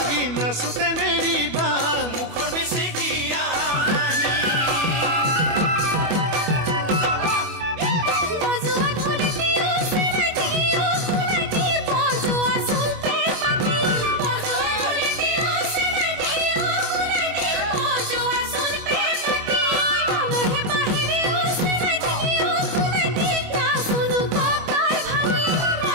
নাচোতে নেৰিবা মুখৰ বেছিকিয়া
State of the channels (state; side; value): late; left; 25 ms